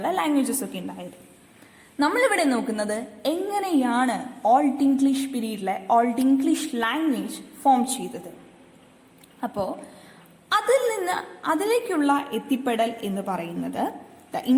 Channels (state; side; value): identical; both; correlation 1.00